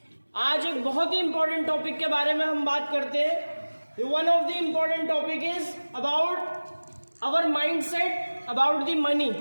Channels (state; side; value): inverted; both; correlation -1.00